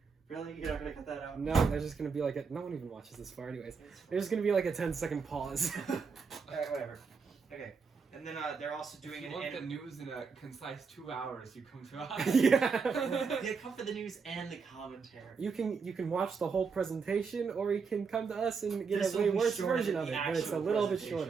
Really? You're not gonna cut that out? No, there's just gonna be like a. No one even watches this far, anyways. There's gonna be like a 10-second pause. Alright, whatever. Okay. And then they're also doing If an you want the anim- news in a concise 2 hours, you come to us. Yeah. They come for the news and the commentary. You can watch the whole presentation, or you can come to us and get This a will way be worse shorter version than of the it, but it's a actual little bit presentation.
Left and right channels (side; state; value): left; quieter; 5.4 dB